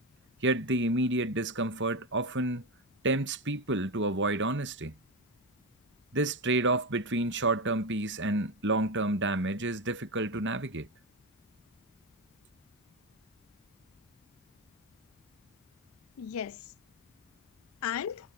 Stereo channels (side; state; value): both; normal; correlation 0.13